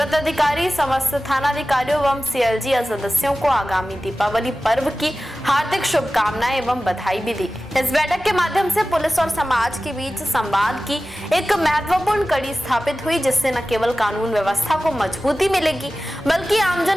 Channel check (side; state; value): both; normal; correlation 0.96